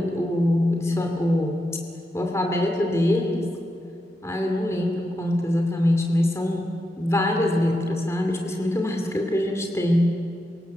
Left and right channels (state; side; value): normal; both; correlation 0.86